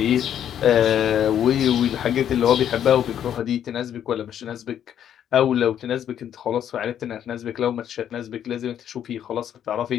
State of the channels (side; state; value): right; quieter; 9.8 dB